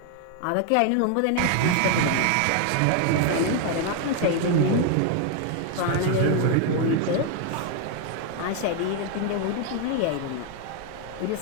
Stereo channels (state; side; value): different; both; correlation 0.01